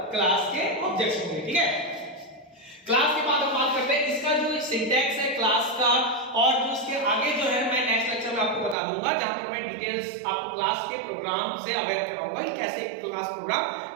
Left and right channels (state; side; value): drops out; left; at 8.8 s